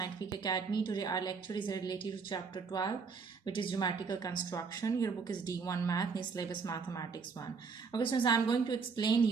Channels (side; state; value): left; quieter; 5.2 dB